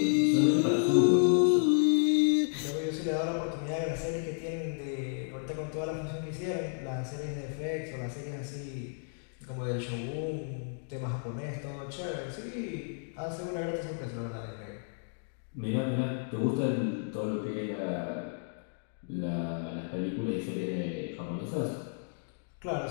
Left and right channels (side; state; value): right; silent; digital silence